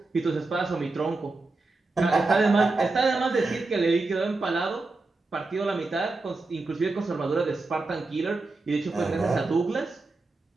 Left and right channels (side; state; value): left; quieter; 3.4 dB